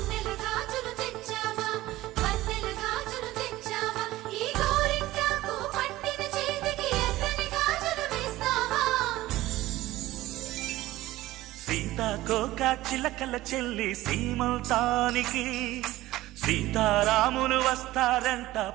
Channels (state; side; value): quieter; left; 16.8 dB